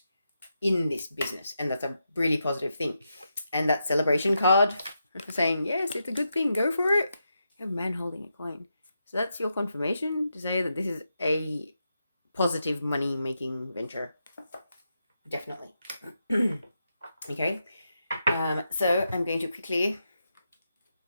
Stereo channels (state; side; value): inverted; both; correlation -0.85